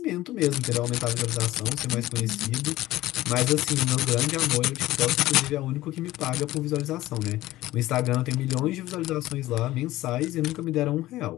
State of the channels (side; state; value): right; quieter; 16.3 dB